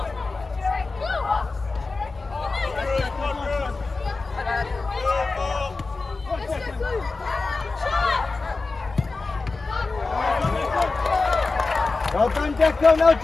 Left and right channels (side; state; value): right; quieter; 3.8 dB